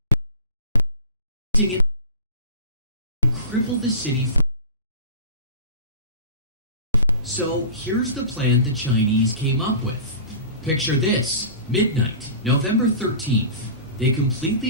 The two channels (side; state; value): both; inverted; correlation -0.36